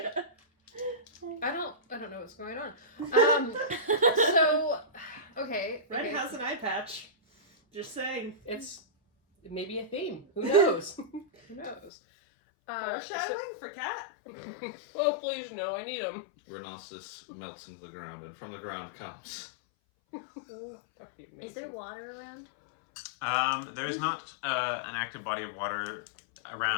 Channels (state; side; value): drops out; right; at 11.9 s